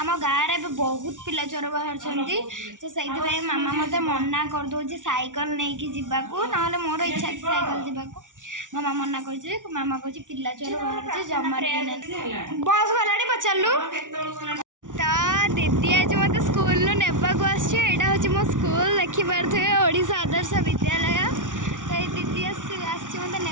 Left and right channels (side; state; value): left; late; 0.87 ms